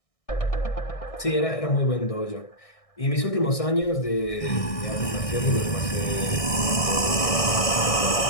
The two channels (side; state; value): right; late; 1.6 ms